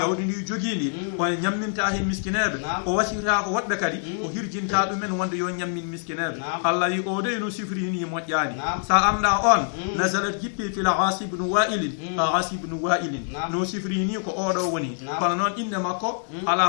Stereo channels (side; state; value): right; silent; digital silence